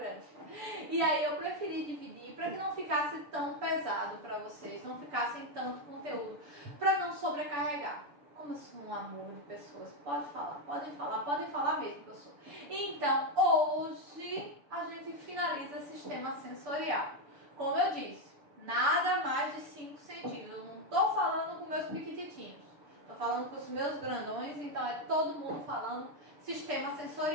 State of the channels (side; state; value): left; late; 6.9 ms